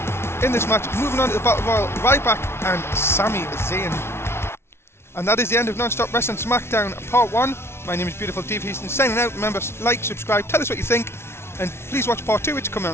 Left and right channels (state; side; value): late; right; 0.12 ms